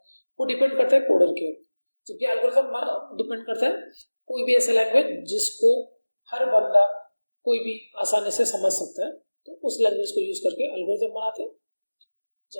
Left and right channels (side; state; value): both; inverted; correlation -1.00